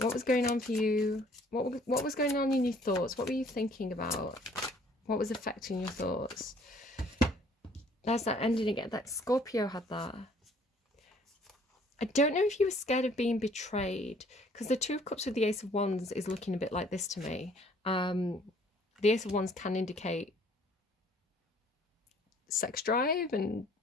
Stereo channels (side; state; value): both; normal; correlation 0.58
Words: was going on for you? What was going on in your thoughts? What were you thinking about? What was affecting your thoughts? There's that ending again. That Scorpio had that. I don't know if you were scared of being betrayed, because the Two of Cups with the Ace of Wands is looking a bit like this to me. The Ace of Wands can indicate sex drive and,